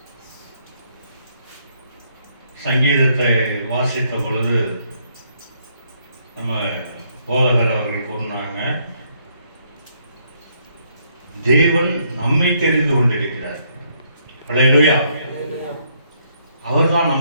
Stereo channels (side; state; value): both; inverted; correlation -0.71